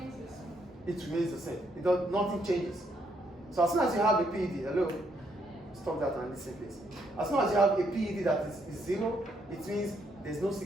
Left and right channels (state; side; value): normal; both; correlation 0.73